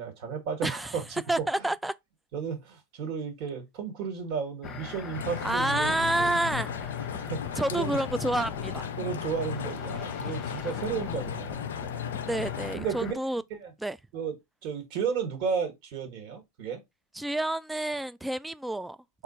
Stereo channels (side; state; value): both; normal; correlation 0.53